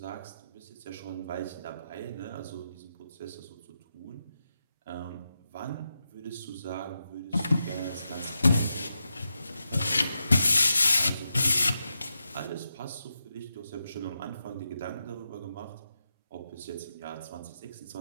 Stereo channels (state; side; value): inverted; both; correlation -0.87